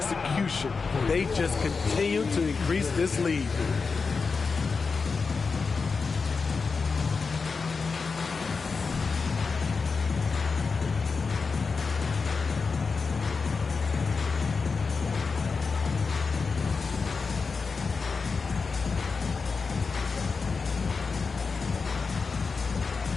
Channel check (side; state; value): right; quieter; 4.8 dB